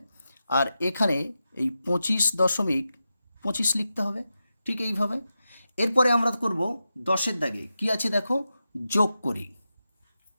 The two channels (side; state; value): both; inverted; correlation -0.90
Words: আর এখানে এই 25.25 লিখতে হবে, ঠিক এইভাবে। এরপরে আমরা করব 10-এর দাগে কি আছে দেখো যোগ করি।